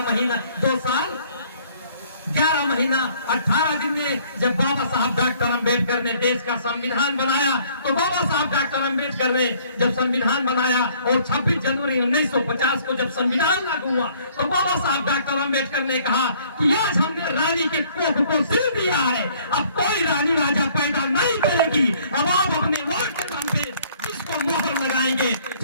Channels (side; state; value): both; inverted; correlation -0.60